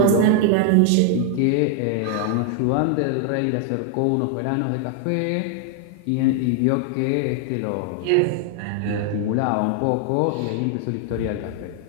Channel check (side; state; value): both; different; correlation 0.00